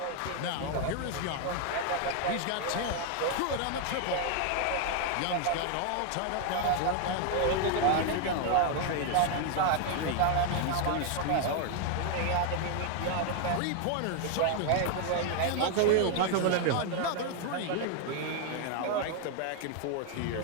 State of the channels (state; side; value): different; both; correlation 0.00